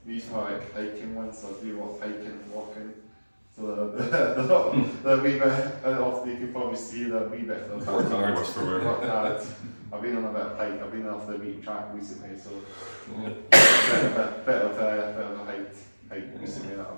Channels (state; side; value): inverted; both; correlation -1.00